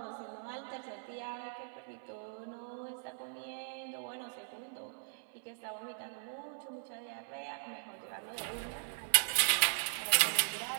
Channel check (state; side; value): silent; left; 52 dB below the other